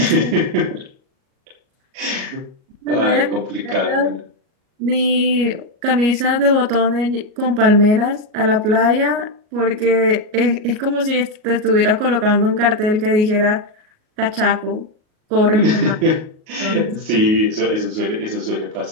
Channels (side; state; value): left; late; 38 ms